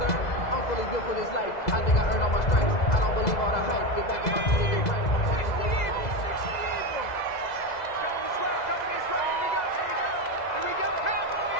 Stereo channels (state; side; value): late; right; 2.0 ms